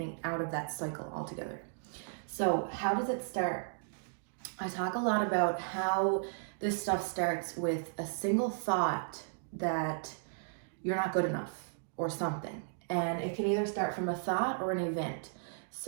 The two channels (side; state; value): left; silent; digital silence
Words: out of that cycle altogether. So how does it start? I talk a lot about how this stuff starts with a single thought that you're not good enough or something. And it can either start from a thought or an event.